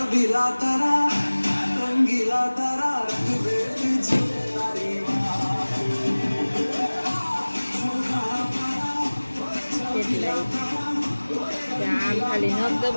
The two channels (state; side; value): inverted; both; correlation -1.00